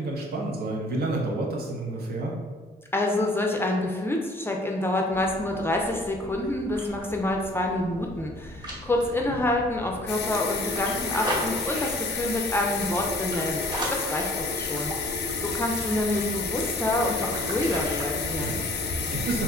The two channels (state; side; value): normal; both; correlation 0.53